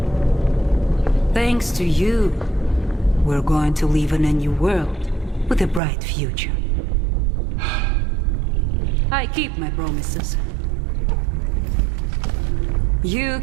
Thanks to you, we're going to live in a new world with a bright future. I keep my promises. You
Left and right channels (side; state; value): left; drops out; at 5.8 s